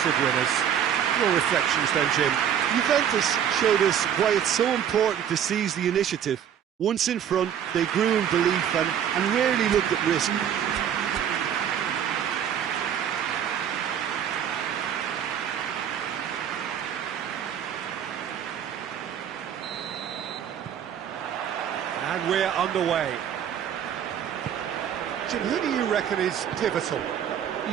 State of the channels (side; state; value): left; quieter; 9.1 dB